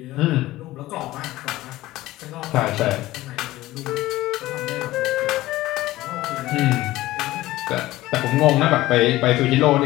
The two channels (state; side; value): quieter; right; 17.0 dB